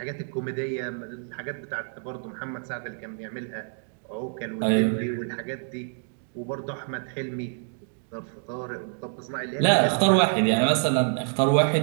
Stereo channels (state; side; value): silent; left; 60 dB below the other